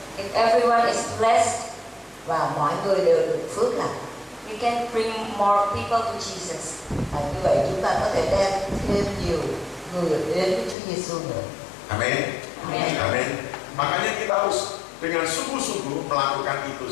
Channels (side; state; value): right; drops out; at 10.8 s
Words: If everyone is blessed, Và mọi người đều được phước lành. we can bring more people to Jesus. Như vậy chúng ta có thể đem thêm nhiều người đến với Chúa Giêsu nữa. Amin. Amin. Amin. Makanya kita harus dengan sungguh-sungguh melakukan itu,